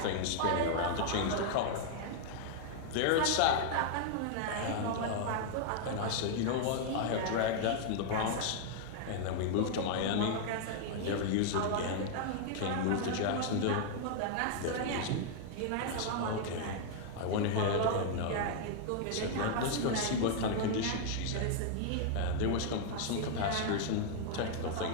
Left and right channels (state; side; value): different; both; correlation -0.01